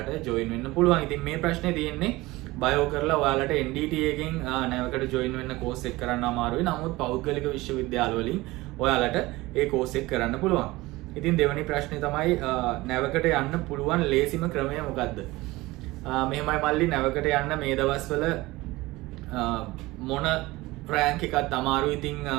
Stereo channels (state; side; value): quieter; left; 20.1 dB